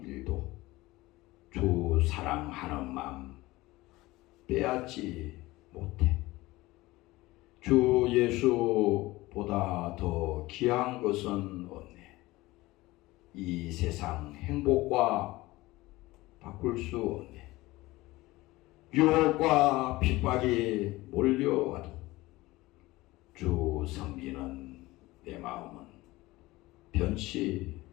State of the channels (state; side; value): quieter; right; 19.5 dB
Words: 일도 주 사랑하는 마음 빼앗지 못해. 주 예수보다 더 귀한 것은 없네. 이 세상 행복과 바꿀 수 없네. 유혹과 핍박이 몰려와도 주 섬기는 내 마음은 변치